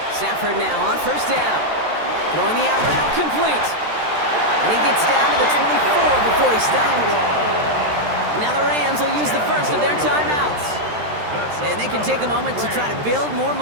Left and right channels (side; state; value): left; late; 13 ms